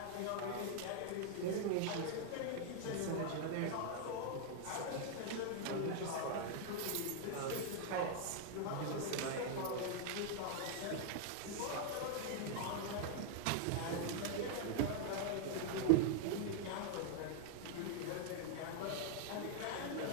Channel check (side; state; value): both; different; correlation 0.00